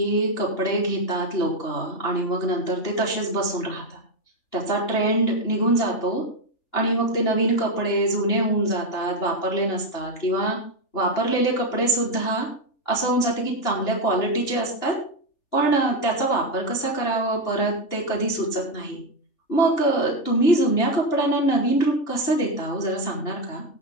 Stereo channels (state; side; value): late; right; 3.4 ms